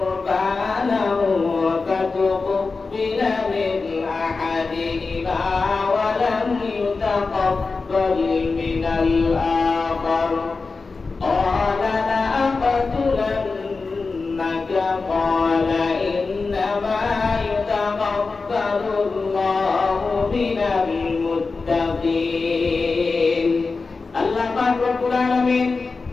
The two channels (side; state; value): right; quieter; 4.2 dB